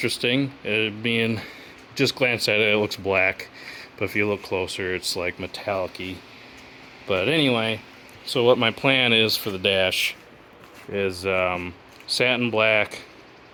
Being just glance at it, it looks black, but if you look closer, it's like metallic-y. But anyway, so what my plan is for the dash is satin black,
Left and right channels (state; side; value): identical; both; correlation 1.00